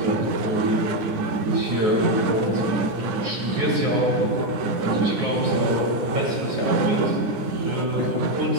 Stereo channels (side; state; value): left; late; 9.8 ms